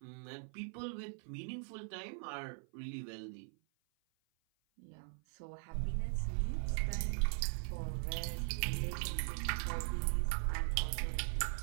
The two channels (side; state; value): left; silent; 51 dB below the other